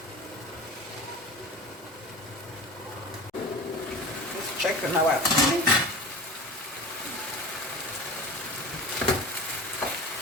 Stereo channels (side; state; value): both; normal; correlation 0.35